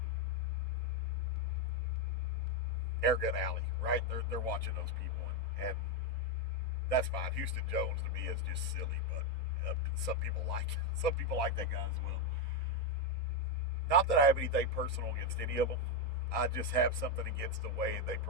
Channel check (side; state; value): both; normal; correlation 0.06